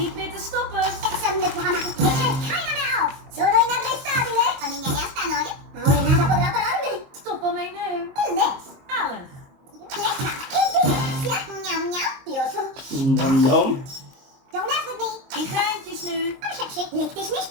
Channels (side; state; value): left; late; 23 ms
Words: meer te stoppen. Exam ne può amarti. Mich hält keiner mehr auf. Sono inarrestabile. To niña nie stanąć. Ora nada podrà pararmi. Stoppen mij nu. Delish. Zalig. Lekker. Delizia. Njam, njam. Pioso. Nom nom. Don't mess with me. Die geintjes nu. Kom, sexy. Leg dich nicht